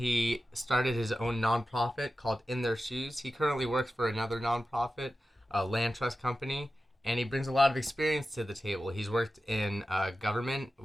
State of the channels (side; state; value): both; normal; correlation 0.93